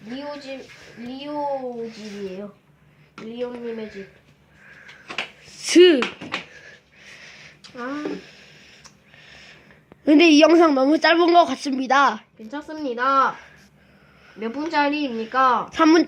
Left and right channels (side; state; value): both; identical; correlation 1.00